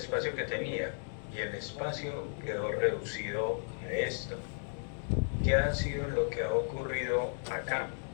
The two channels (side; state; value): right; silent; digital silence